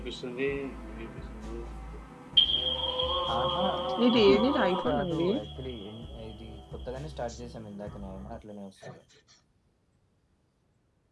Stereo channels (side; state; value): both; identical; correlation 1.00